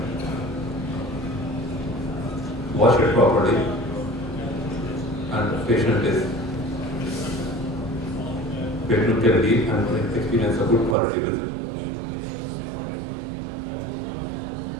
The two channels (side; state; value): left; drops out; at 11.0 s